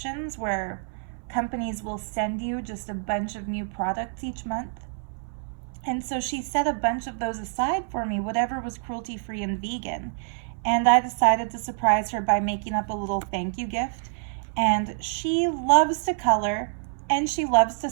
where companies will send you just a bunch of new products each month. And so she set a bunch of those aside for me, whatever was cruelty-free and vegan. and I decided to surprise her by making up a little thank you gift. And she loves to color and she loves to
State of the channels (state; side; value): silent; left; 60 dB below the other